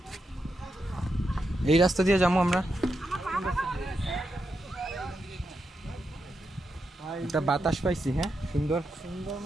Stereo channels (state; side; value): normal; both; correlation 0.85